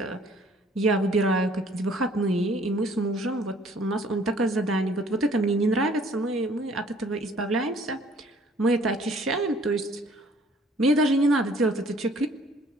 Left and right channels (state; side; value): normal; both; correlation 0.58